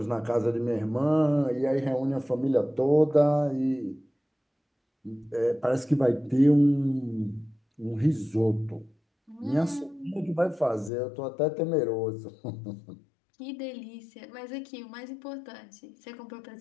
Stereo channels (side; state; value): right; drops out; at 10.9 s